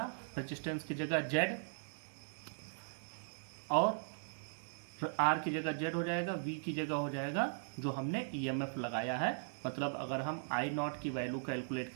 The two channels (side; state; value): left; silent; digital silence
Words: रेजिस्टेंस की जगह Z और R की जगह Z हो जाएगा, V की जगह हो जाएगा जो हमने EMF लगाया है। मतलब अगर हम I0 की वैल्यू कैलकुलेट